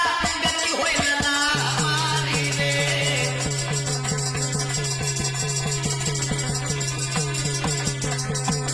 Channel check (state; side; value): identical; both; correlation 1.00